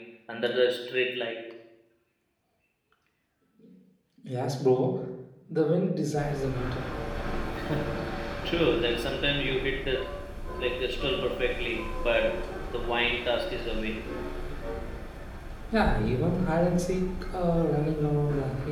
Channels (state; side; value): identical; both; correlation 1.00